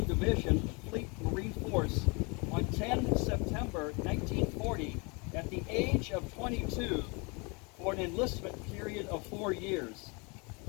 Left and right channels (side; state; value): right; quieter; 30.5 dB